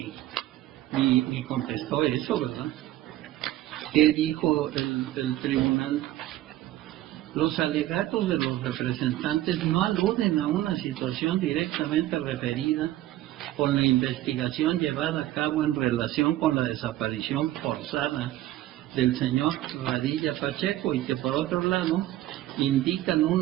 ni contestó eso, ¿verdad? ¿Qué dijo el tribunal? Los alegatos de los representantes no aluden a una situación directamente referida con la investigación llevada a cabo en relación con la desaparición forzada del señor Padilla Pacheco y que por otro lado indican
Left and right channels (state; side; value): quieter; left; 14.9 dB